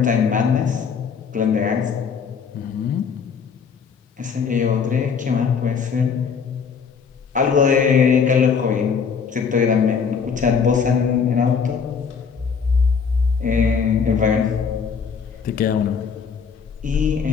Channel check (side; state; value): right; quieter; 6.2 dB